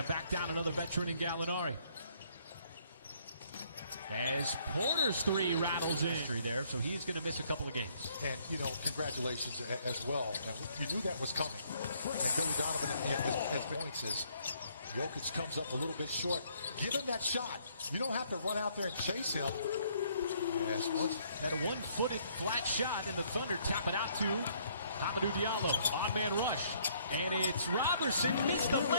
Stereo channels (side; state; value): both; inverted; correlation -0.65